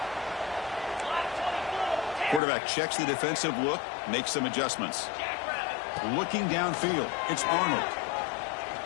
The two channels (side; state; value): right; drops out; at 2.4 s